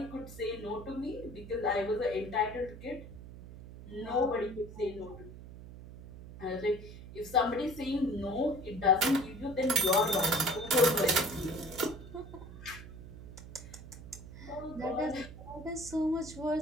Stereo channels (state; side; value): noise; right; hum, 14 dB below the sound